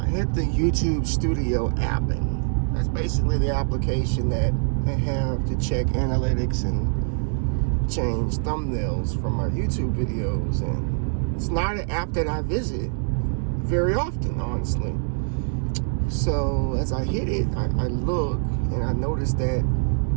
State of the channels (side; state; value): left; silent; digital silence